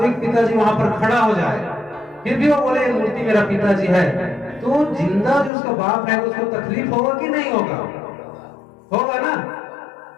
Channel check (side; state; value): right; drops out; at 5.5 s